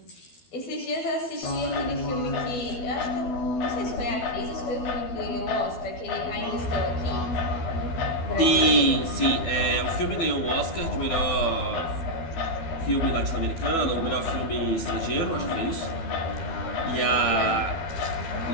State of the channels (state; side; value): late; right; 12 ms